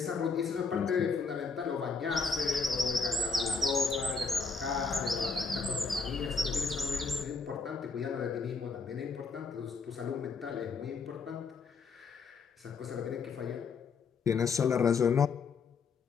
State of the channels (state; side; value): quieter; right; 4.9 dB